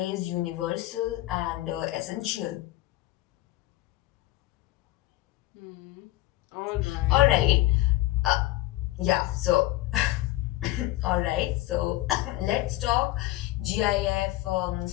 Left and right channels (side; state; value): right; quieter; 17.1 dB